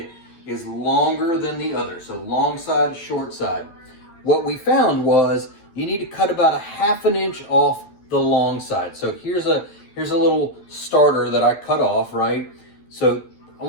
is longer than the other. So long side, short side. What we found was you need to cut about a 1/2 inch off the long side. So here's a little starter that I cut off, right? So I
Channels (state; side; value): late; right; 12 ms